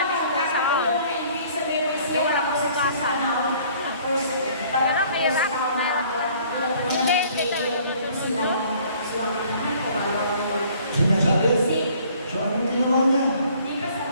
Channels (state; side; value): inverted; both; correlation -0.56